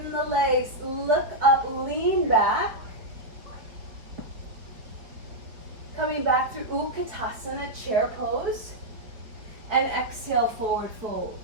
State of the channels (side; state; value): left; late; 4.4 ms